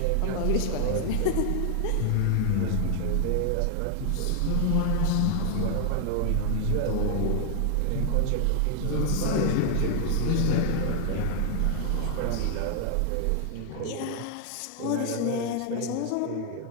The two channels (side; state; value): both; different; correlation 0.00